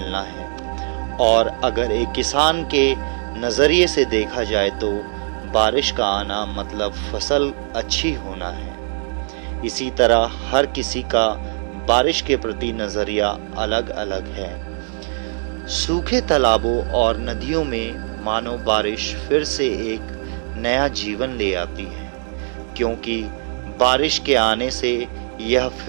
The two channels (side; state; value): left; silent; digital silence